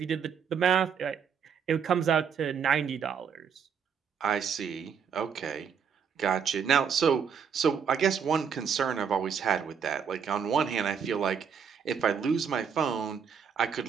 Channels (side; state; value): left; quieter; 7.0 dB